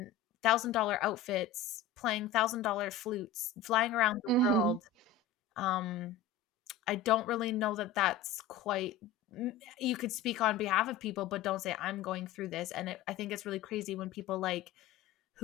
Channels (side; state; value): right; quieter; 7.3 dB